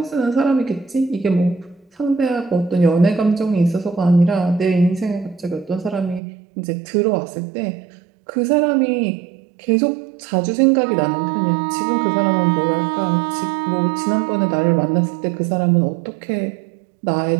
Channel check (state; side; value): drops out; left; at 6.2 s